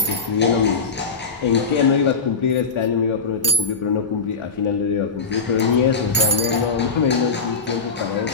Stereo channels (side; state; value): right; quieter; 4.7 dB